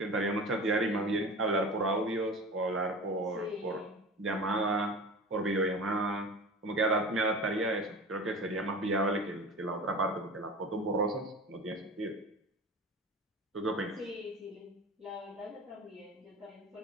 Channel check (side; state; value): both; normal; correlation 0.35